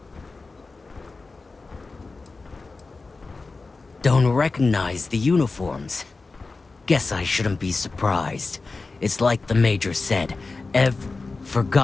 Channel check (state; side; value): quieter; right; 3.8 dB